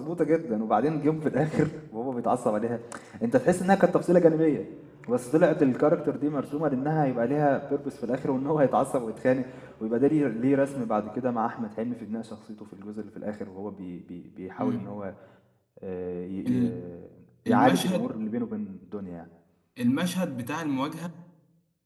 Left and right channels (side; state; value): both; identical; correlation 1.00